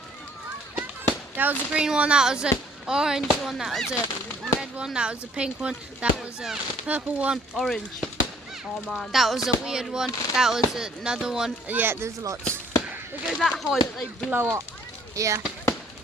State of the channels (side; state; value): both; normal; correlation 0.60